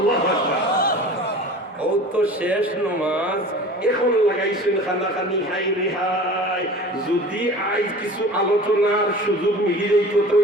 আকবার ও তো শেষ নামাজ এখন লাগাইছেন খানাখানি হাই রেহাই যদি আজ কিছু আলোচনার সুযোগ মিলি যাইতো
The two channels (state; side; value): normal; both; correlation 0.40